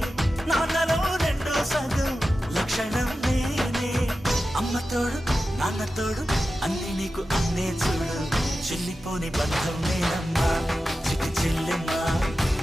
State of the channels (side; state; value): both; normal; correlation 0.93